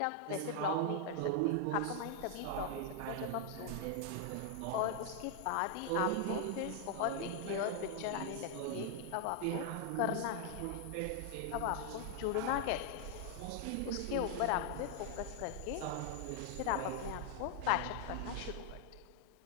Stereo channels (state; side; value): different; both; correlation 0.00